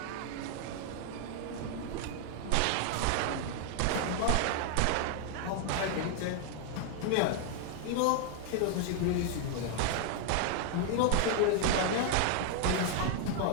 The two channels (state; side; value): different; both; correlation 0.00